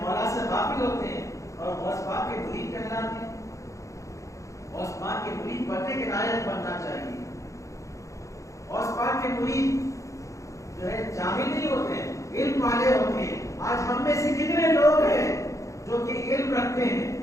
سے غافل ہوتے ہیں اور غوث پاک کے مرید کہلاتے ہیں۔ غوث پاک کے مرید بننے کے لائق بننا چاہیے۔ غوث پاک کے مرید جو ہے جاہل نہیں ہوتے ہیں، علم والے ہوتے ہیں۔ آج ہم میں سے کتنے لوگ ہیں جو کہ علم رکھتے ہیں؟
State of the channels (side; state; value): right; late; 0.15 ms